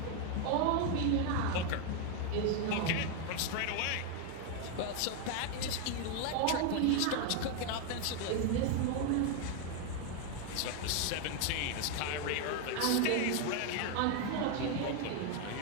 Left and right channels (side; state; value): both; different; correlation 0.01